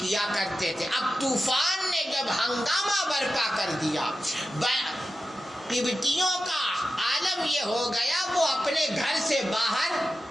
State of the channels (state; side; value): normal; both; correlation 0.92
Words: کرتے تھے. اب طوفان نے جب ہنگامہ برپا کر دیا، قبطیوں کا عالم یہ ہو گیا وہ اپنے گھر سے باہر